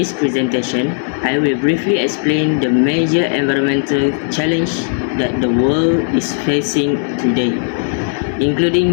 presentation, I will briefly explain the major environmental challenge that the world is facing today,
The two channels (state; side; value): silent; right; 69 dB below the other